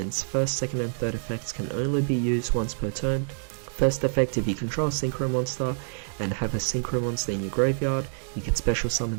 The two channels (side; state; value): left; silent; digital silence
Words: First, second and third effects can only be used once per turn. First effect, if you control a synchro monster and have a synchro monster in your graveyard, you can special